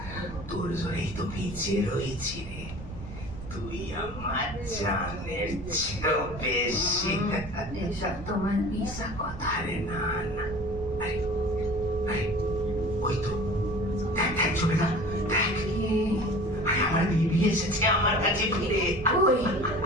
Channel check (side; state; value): right; noise; rumble, 11 dB below the sound